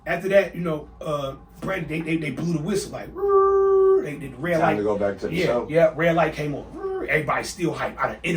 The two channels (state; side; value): identical; both; correlation 1.00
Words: after that, Brandy, they blew the whistle, like, the red light. Time to go back to the show. Yeah, red light came on. Everybody still hyped. I done